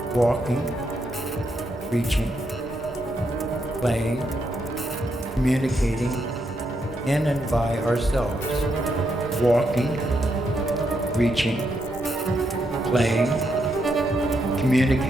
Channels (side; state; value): both; normal; correlation 0.80